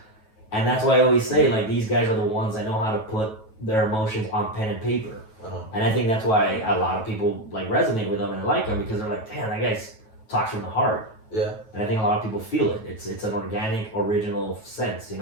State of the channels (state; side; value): late; right; 9.2 ms